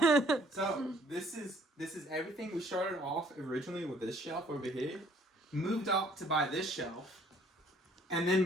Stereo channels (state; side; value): normal; both; correlation 0.60